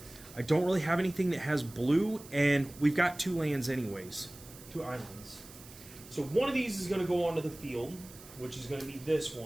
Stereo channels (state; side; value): noise; right; hiss, 19 dB below the sound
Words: I don't really have anything that has blue, and we've got 2 lands anyways. 2 islands. So one of these is going to go onto the field, which is going to be this